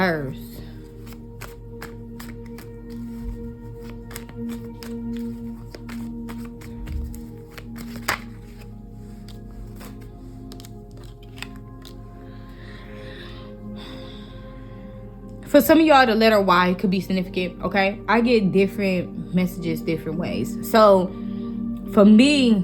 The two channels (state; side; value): identical; both; correlation 1.00